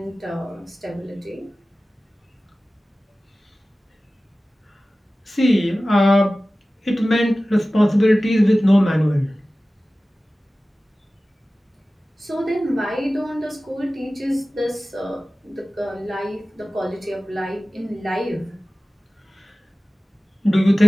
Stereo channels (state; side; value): normal; both; correlation 0.96